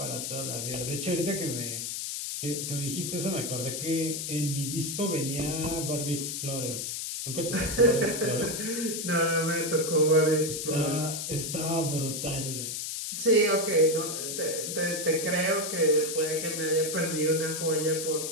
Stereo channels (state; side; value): noise; left; hiss, 4 dB below the sound